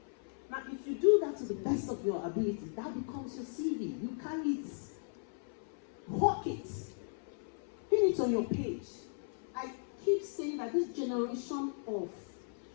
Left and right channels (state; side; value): silent; right; 53 dB below the other